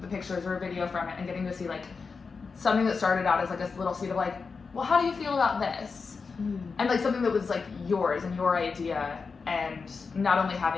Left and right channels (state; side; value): quieter; right; 4.9 dB